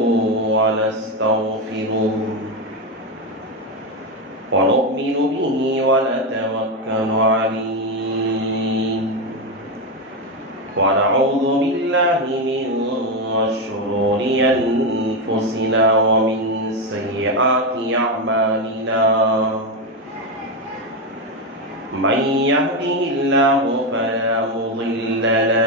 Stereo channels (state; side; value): normal; both; correlation 0.09